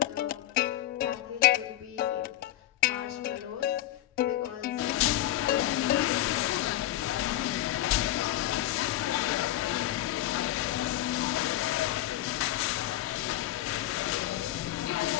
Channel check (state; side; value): quieter; right; 14.3 dB